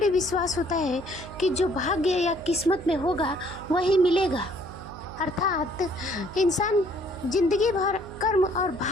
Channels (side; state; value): right; noise; hum, 15 dB below the sound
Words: विश्वास होता है कि जो भाग्य या किस्मत में होगा वही मिलेगा। अर्थात इंसान जिंदगी भर कर्म और